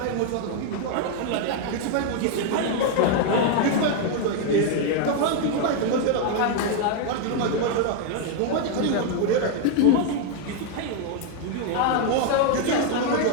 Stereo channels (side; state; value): both; different; correlation 0.00